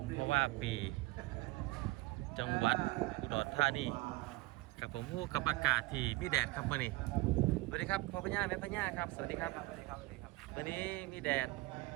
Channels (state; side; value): quieter; left; 20.5 dB